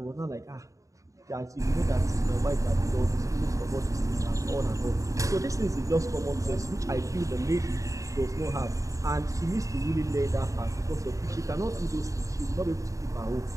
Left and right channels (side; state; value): left; late; 0.16 ms